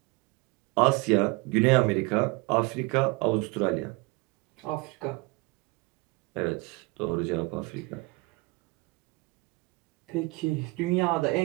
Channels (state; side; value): quieter; left; 24.8 dB